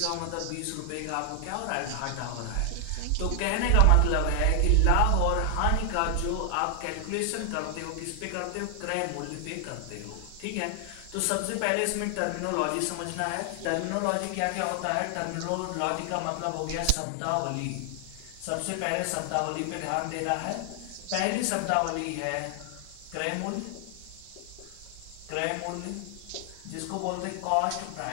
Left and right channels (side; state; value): both; different; correlation 0.00